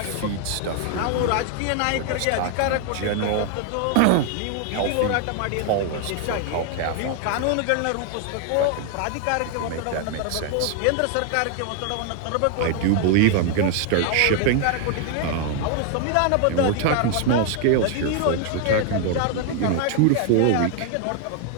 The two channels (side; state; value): both; different; correlation 0.00